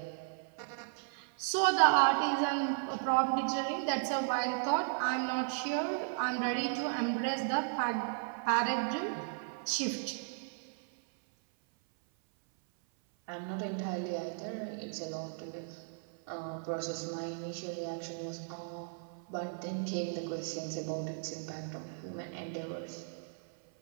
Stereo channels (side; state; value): left; silent; 54 dB below the other